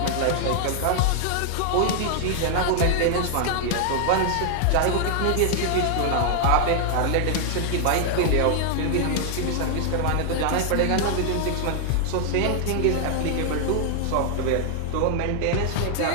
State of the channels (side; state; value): both; different; correlation 0.00